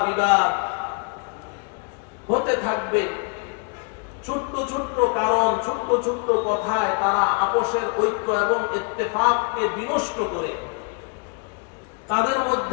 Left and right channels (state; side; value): quieter; right; 35.9 dB